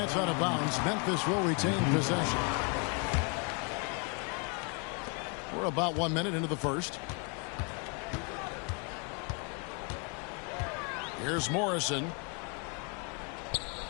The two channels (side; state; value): right; quieter; 35.2 dB